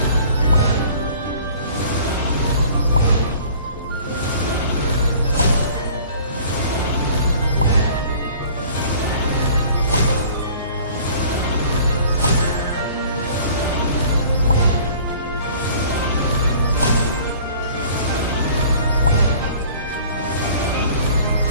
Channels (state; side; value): inverted; both; correlation -0.49